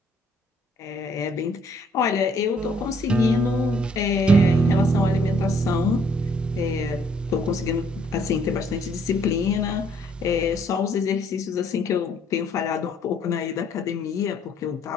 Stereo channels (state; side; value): normal; both; correlation 0.64